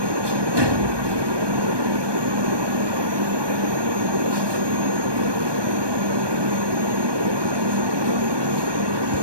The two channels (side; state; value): left; late; 1.2 ms